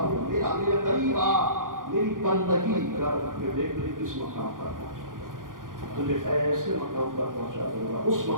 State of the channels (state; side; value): late; left; 0.90 ms